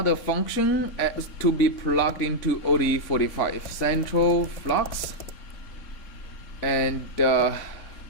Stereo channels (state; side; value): late; right; 3.6 ms